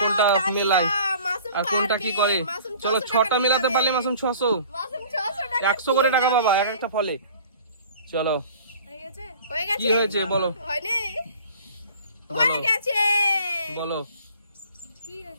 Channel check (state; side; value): inverted; both; correlation -0.48